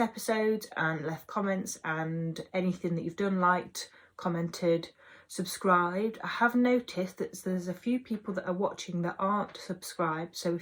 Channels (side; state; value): both; identical; correlation 1.00